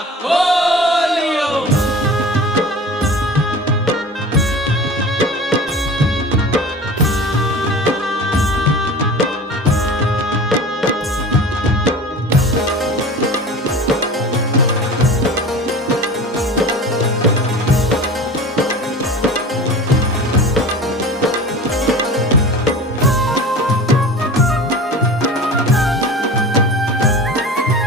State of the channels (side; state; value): both; normal; correlation 0.36